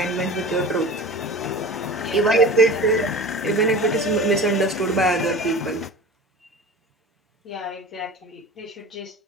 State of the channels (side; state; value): both; normal; correlation 0.37